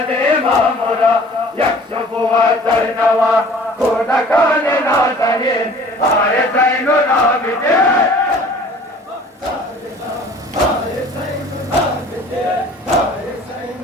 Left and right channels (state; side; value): normal; both; correlation 0.49